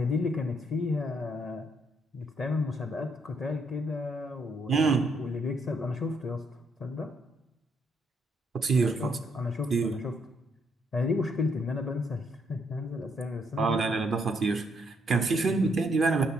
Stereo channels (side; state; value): both; normal; correlation 0.73